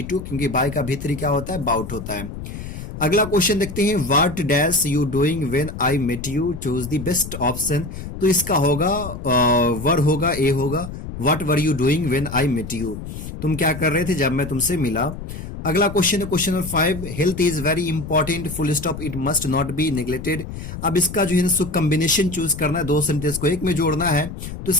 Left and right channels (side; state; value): left; noise; rumble, 9 dB below the sound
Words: टू, क्योंकि बाय का भीतरी क्या होता है, बाउट होता है। अगला क्वेश्चन देखते हैं। What dash you doing when I met you, choose the best option. तो इसका होगा वर होगा, ए होगा। What were you doing when I met you, तुम क्या कर रहे थे जब मैं तुमसे मिला। अगला क्वेश्चन है question number 5, health is very important full stop it must not be neglected. अब इसका जो है ना कॉम्बिनेशन चूज करना है, 2 सेंटेंस को एक में जोड़ना है, तो